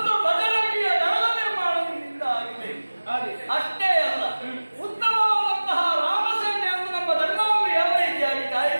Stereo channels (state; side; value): inverted; both; correlation -1.00